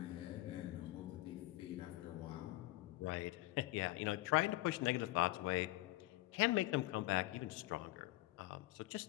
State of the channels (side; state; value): right; quieter; 18.4 dB